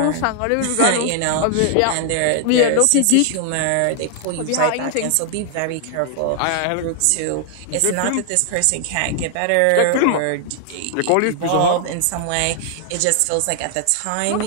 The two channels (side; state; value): both; different; correlation 0.00